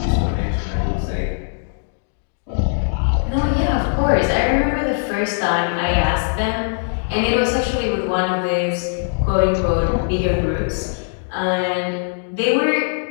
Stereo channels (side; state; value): right; silent; digital silence